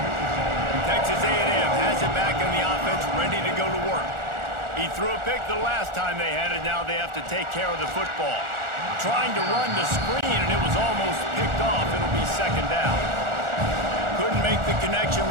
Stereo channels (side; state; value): left; late; 1.4 ms